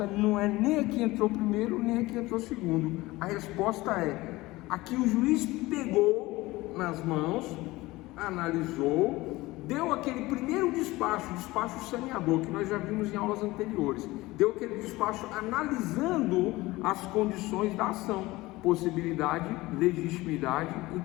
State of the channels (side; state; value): right; quieter; 19.8 dB